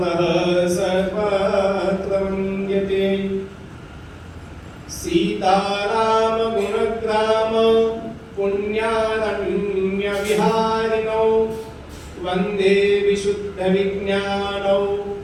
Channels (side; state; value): both; identical; correlation 1.00